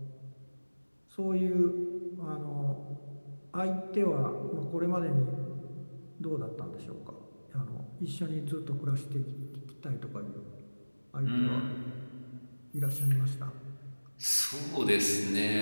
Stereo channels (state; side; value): inverted; both; correlation -1.00